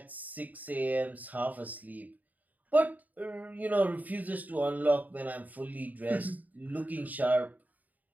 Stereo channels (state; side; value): late; left; 0.078 ms